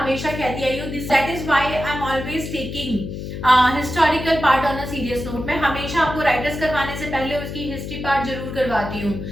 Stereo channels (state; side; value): noise; left; hum, 7 dB below the sound